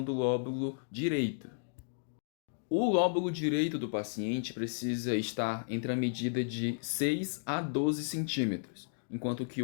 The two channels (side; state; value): right; silent; digital silence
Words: do lóbulo direito. O lóbulo direito do paciente precisa estar entre a medida de 6 a 12 centímetros, enquanto que